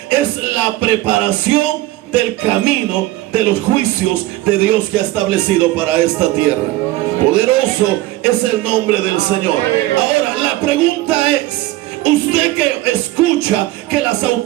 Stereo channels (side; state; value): left; quieter; 17.0 dB